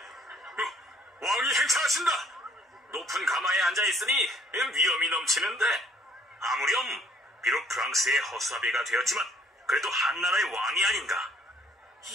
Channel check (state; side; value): normal; both; correlation 0.61